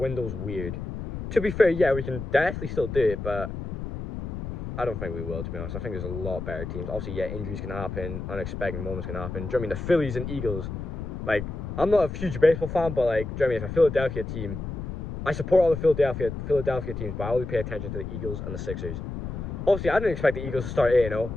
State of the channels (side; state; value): left; noise; rumble, 6 dB below the sound